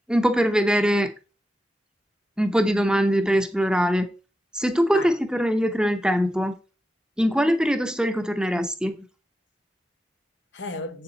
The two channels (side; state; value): both; normal; correlation 0.90